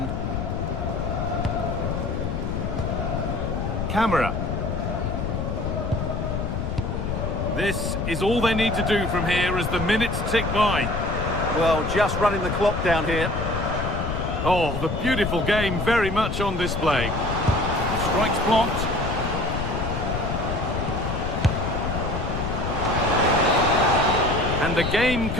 Camera. This is all they need to do from here as the minutes tick by. Well, just running the clock down here. Oh, the beautiful game very much on display. Strikes blocked. And the game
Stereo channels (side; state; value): left; noise; rumble, 2 dB below the sound